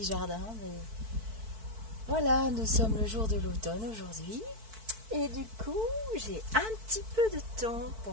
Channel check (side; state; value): left; late; 4.5 ms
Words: jardin, mais voilà, nous sommes le jour de l'automne aujourd'hui. Et du coup, j'ai un petit peu de temps pour